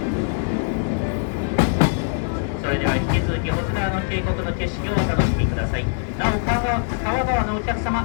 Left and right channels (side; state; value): right; silent; 60 dB below the other